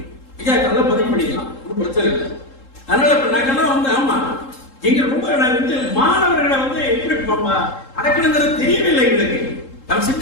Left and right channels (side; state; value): right; late; 3.7 ms